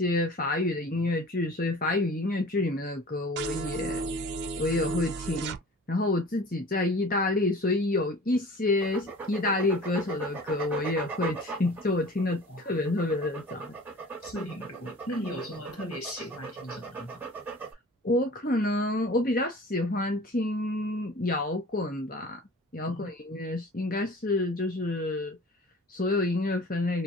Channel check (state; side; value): normal; both; correlation 0.43